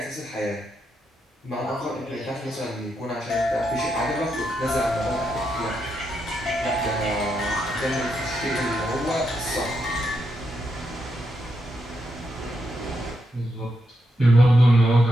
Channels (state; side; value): normal; both; correlation 0.82